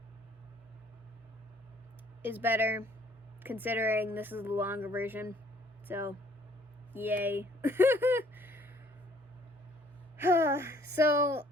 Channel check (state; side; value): normal; both; correlation 0.60